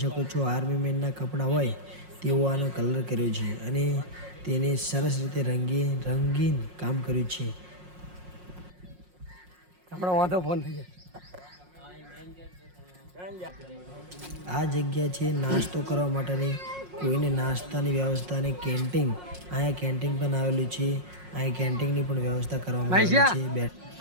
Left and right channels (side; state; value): left; late; 5.5 ms